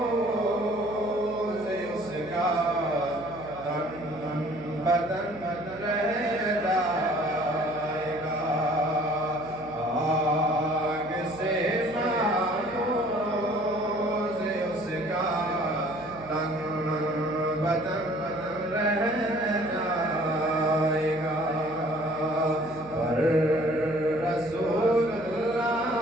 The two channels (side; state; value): right; noise; hum, 17 dB below the sound